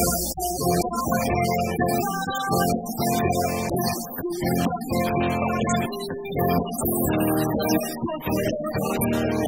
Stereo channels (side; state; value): both; identical; correlation 1.00